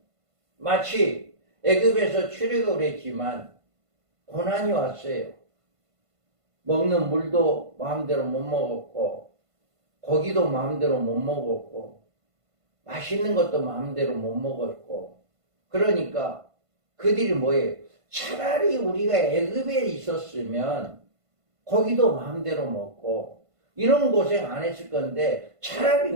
마치 애굽에서 출애굽을 했지만 고난이 왔어요. 먹는 물도 마음대로 못 먹었고, 고기도 마음대로 못 먹었고, 맛있는 것도 마음대로 못 먹었고, 그러니까 그들이 뭐예요? 차라리 우리가 애굽에 있었으면 고기도 마음대로 먹고 이런 고생 안 했을 건데, 차라리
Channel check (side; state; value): left; late; 1.5 ms